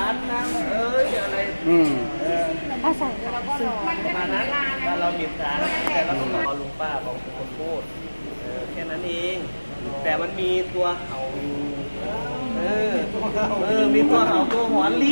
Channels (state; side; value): inverted; both; correlation -1.00